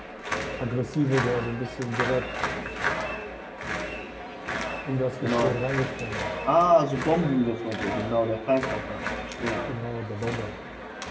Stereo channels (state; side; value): identical; both; correlation 1.00